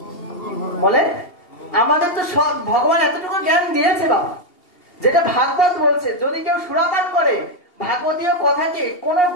বলে আমাদের তো সব ভগবান এতটুকু জ্ঞান দিয়েছে বাবা, যেটা ভাগবত বলছে, যদি কেউ সুরাপান করে ভাগবতীয় কথাকে কোন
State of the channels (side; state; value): right; late; 2.8 ms